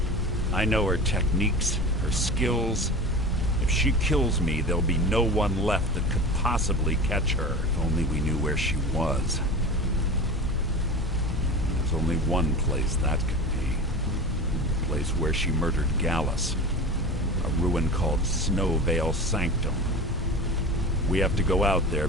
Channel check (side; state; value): both; normal; correlation 0.32